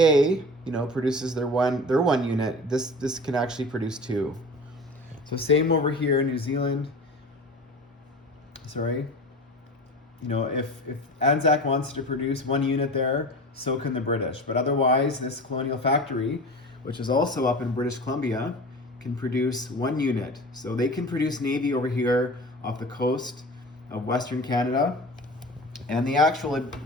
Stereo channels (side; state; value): both; normal; correlation 0.35